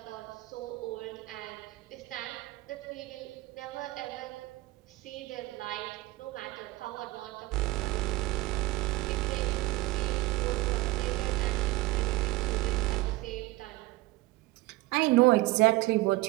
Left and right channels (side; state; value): left; quieter; 19.9 dB